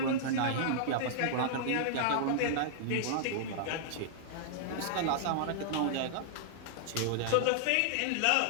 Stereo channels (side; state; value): both; different; correlation -0.01